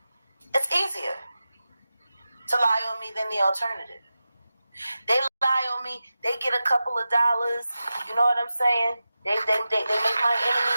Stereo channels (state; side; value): inverted; both; correlation -0.93